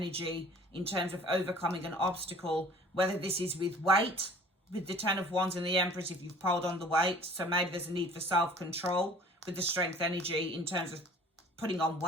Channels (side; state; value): both; normal; correlation 0.49